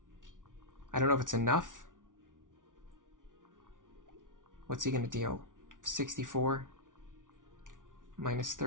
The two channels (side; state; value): left; late; 0.88 ms